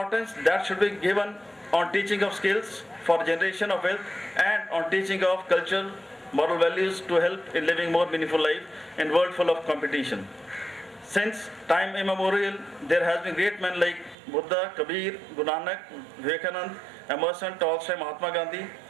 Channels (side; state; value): left; drops out; at 14.2 s